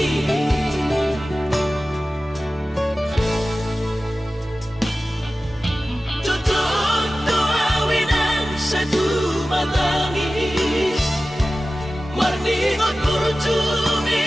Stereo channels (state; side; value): normal; both; correlation 0.95